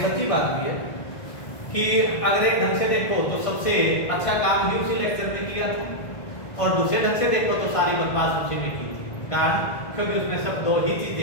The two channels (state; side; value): late; right; 1.5 ms